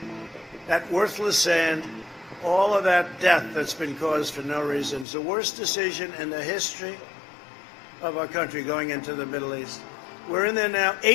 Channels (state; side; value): drops out; right; at 5.1 s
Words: that worthless sand, all of that death that's been caused for no reason. It's the worst decision in the history of our country going into the Middle East. We're in there now,